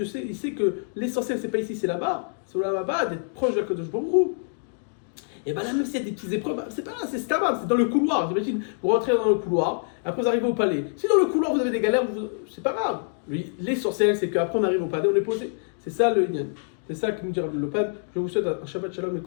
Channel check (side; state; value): right; silent; digital silence